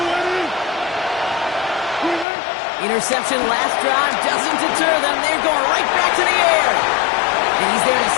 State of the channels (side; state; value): right; drops out; at 2.2 s